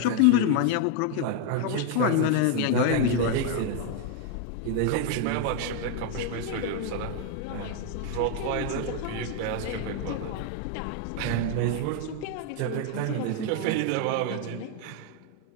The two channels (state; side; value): different; both; correlation 0.01